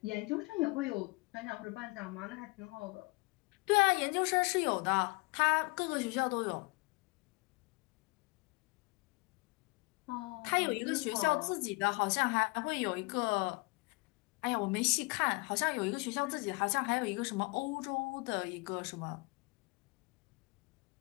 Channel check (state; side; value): quieter; right; 27.3 dB